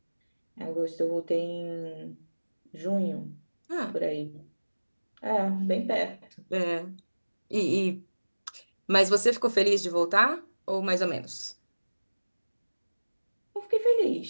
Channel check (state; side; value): inverted; both; correlation -1.00